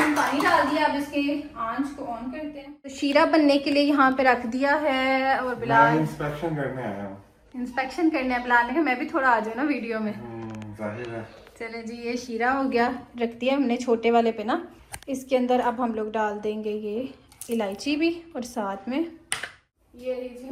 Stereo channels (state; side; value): identical; both; correlation 1.00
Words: पानी डाल दिया। अब इसके आंच को ऑन करते हैं। तो शीरा बनने के लिए यहाँ पे रख दिया है, और बिलाल इंस्पेक्शन करने आया हूँ। इंस्पेक्शन करने है बिलाल ने, मैं भी थोड़ा आ जाऊँ ना वीडियो में। जाहिर है। चले जी, ये शीरा हो गया, रख दिया हमने छोटे वाले पे ना। इसके अंदर अब हम लोग डाल देंगे ये इलायची भी, और साथ में ये जी